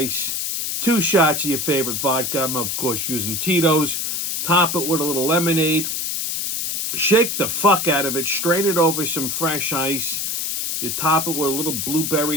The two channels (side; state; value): left; noise; hiss, 2 dB below the sound